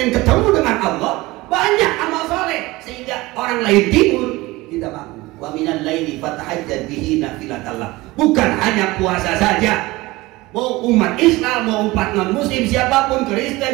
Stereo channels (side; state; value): left; quieter; 20.5 dB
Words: ketemu dengan Allah, banyak amal soleh sehingga orang lain tidur, kita bangun. Wa minal laili fatahajjad bihi nafilatallah. Bukan hanya puasa saja. Mau umat Islam, mau umat non muslim, siapapun,